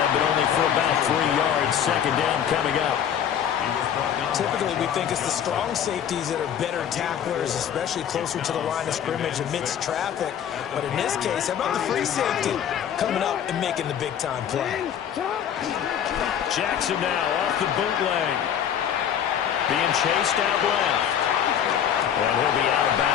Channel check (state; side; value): quieter; right; 9.1 dB